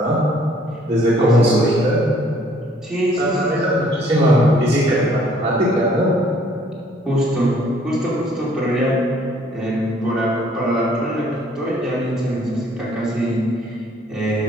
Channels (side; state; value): both; normal; correlation 0.61